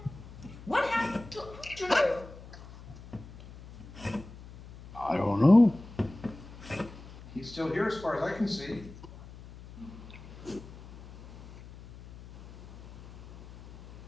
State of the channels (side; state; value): left; noise; hum, 17 dB below the sound